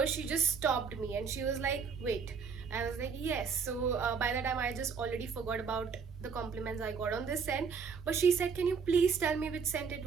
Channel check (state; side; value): quieter; left; 5.9 dB